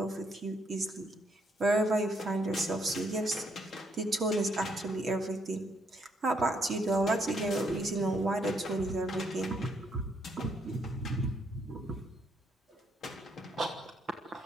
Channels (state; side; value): normal; both; correlation 0.73